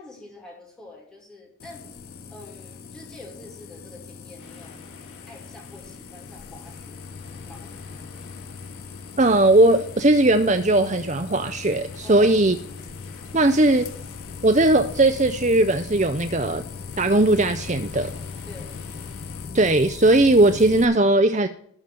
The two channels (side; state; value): both; normal; correlation 0.37